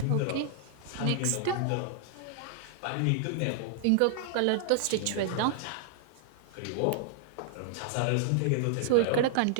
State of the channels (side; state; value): both; different; correlation -0.01